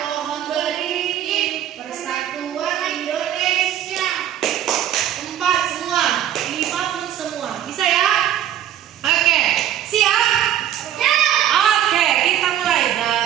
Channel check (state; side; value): quieter; left; 11.1 dB